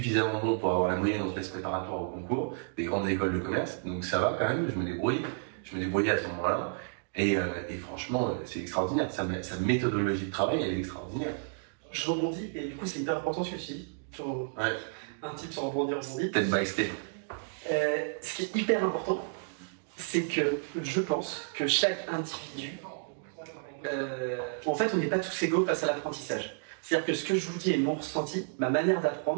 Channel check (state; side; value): silent; left; digital silence